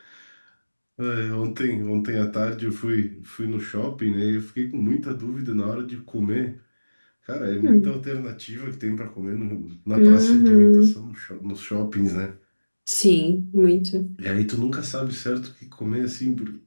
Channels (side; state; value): both; inverted; correlation -1.00